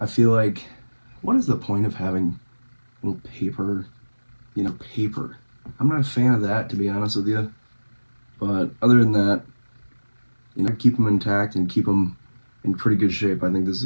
I feel like, what is the point of having little paper, paper? I'm not a fan of that, to be honest with you. But other than that, keep them intact and keep them in pretty good shape. I think this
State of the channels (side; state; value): both; inverted; correlation -1.00